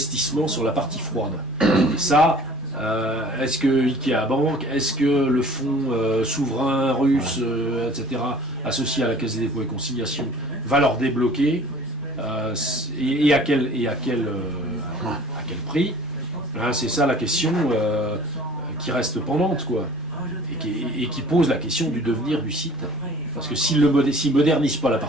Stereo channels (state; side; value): normal; both; correlation 0.48